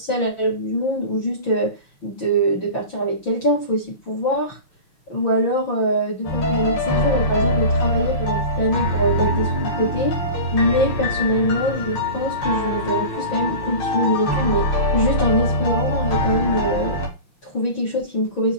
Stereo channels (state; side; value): late; right; 5.9 ms